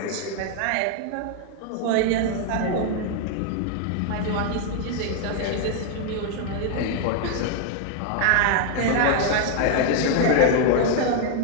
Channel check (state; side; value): different; both; correlation 0.00